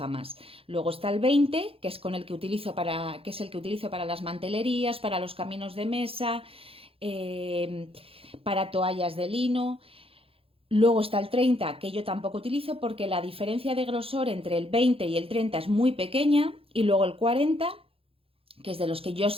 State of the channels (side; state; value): left; late; 0.27 ms